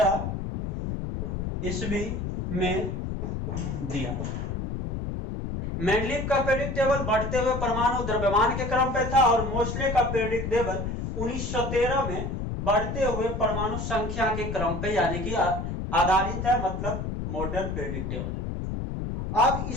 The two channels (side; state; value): left; noise; rumble, 4 dB below the sound